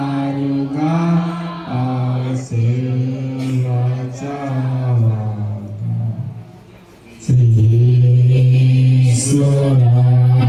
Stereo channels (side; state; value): both; identical; correlation 1.00